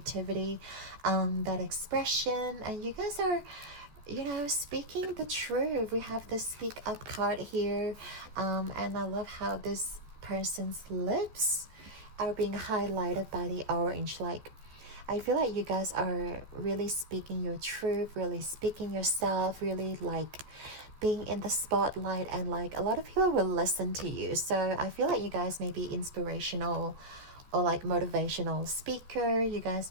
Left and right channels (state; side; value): late; left; 14 ms